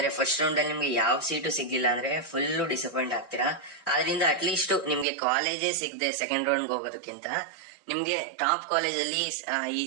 ಫಸ್ಟ್ ರೌಂಡ್ ಅಲ್ಲಿ ನಿಮ್ಗೆ ಯಾವ ಸೀಟು ಸಿಗ್ಲಿಲ್ಲ ಅಂದ್ರೆ ಫುಲ್ ಡಿಸಪಾಯಿಂಟ್ ಆಗ್ತೀರಾ. ಆದ್ರಿಂದ ಅಟ್ಲೀಸ್ಟ್ ನಿಮ್ಗೆ ಕಾಲೇಜೇ ಸಿಗದೆ ಸೆಕೆಂಡ್ ರೌಂಡ್ ಹೋಗೋದಕ್ಕಿಂತ ನಿಮ್ಗೆ ಟಾಪ್ ಕಾಲೇಜ್ ಅಲ್ಲಿ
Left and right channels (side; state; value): left; drops out; at 5.1 s